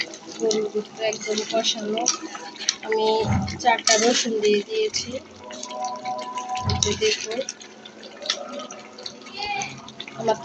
গরুর গোস্ত একদম কষানো। আমি 4টা রসুন দিয়ে দিয়েছি। দেখুন আমার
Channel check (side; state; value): both; identical; correlation 1.00